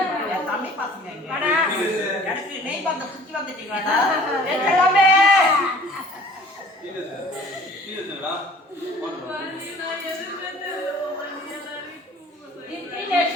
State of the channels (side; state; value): both; normal; correlation 0.50